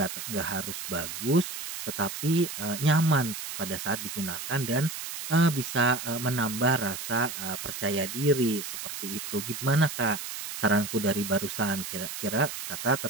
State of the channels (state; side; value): noise; right; hiss, 7 dB below the sound